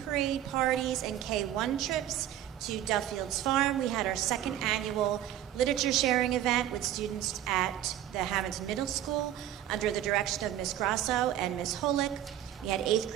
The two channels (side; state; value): left; quieter; 12.0 dB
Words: parade, parties, and K1 trips, to Duffield's Farm. We had our second annual literature sharing event with students at the Hammonton Middle School under the direction of Ms. Grasso and Ms. Holick. We had 8th